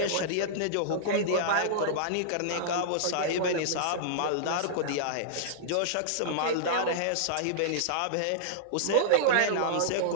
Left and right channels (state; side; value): different; both; correlation -0.02